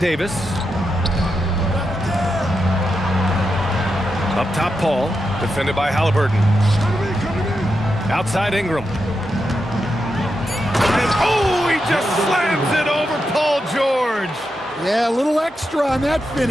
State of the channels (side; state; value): both; normal; correlation 0.87